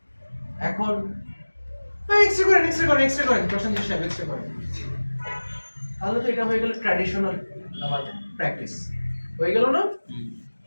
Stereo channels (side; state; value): both; inverted; correlation -1.00